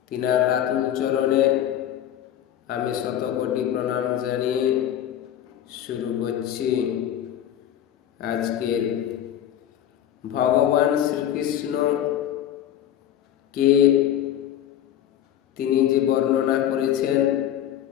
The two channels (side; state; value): right; quieter; 10.9 dB